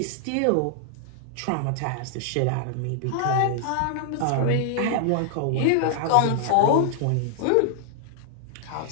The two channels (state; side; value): different; both; correlation 0.00